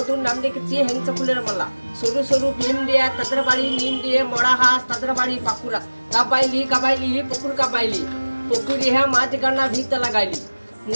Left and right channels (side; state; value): both; inverted; correlation -1.00